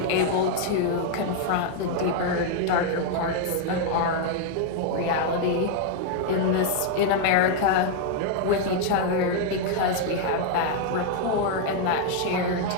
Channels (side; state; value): both; different; correlation 0.00